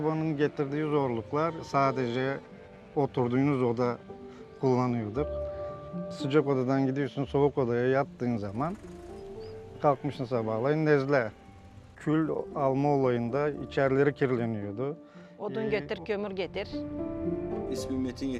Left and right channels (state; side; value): identical; both; correlation 1.00